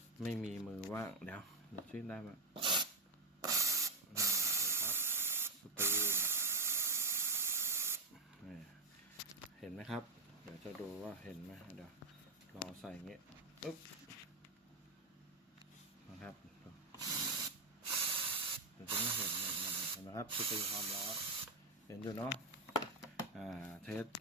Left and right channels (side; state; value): left; quieter; 3.7 dB